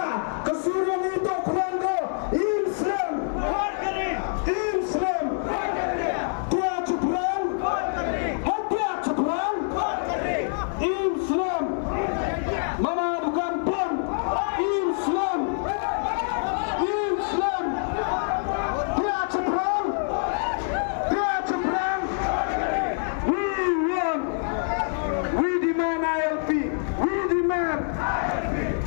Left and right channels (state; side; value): silent; right; 56 dB below the other